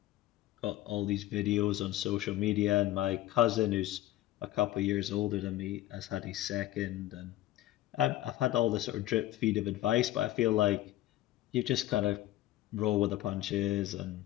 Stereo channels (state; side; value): quieter; right; 14.9 dB